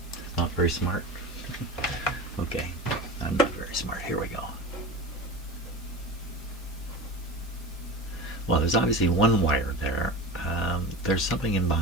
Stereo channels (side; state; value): both; normal; correlation 0.30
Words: It's not very smart. Okay, I'm not very smart. Here we go. Well, there's obviously 1 wire there. There's something in